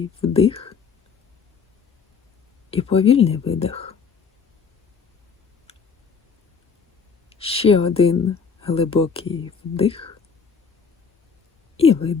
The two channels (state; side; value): quieter; right; 5.7 dB